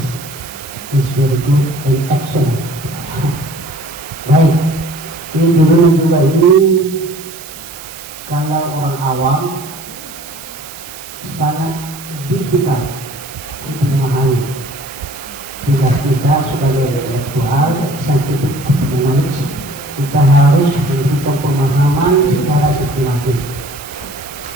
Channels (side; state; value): right; noise; hiss, 15 dB below the sound